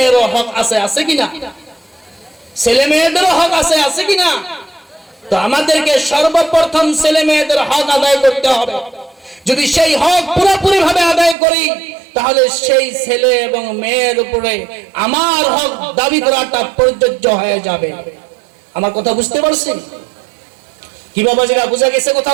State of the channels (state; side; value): drops out; left; at 11.4 s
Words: হক আছে কিনা? ছেলে মেয়েদেরও হক আছে কিনা? তো আমাদেরকে সর্বপ্রথম ছেলে মেয়েদের হক আদায় করতে হবে। যদি সেই হক পুরোপুরি ভাবে আদায় করি, তাহলে সেই ছেলে এবং মেয়ের উপরে আমার হক দাবি করাটা প্রযোজ্য হয়ে যাবে। আমার কথা বুঝতে পারছেন কি বাবাজিরা? বুঝা গেছে